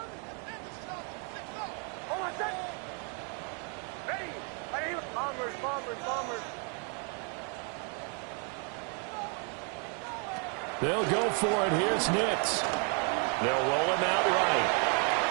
They'll go for it. Here's Nix. They'll roll him out right.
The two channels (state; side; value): quieter; left; 39.1 dB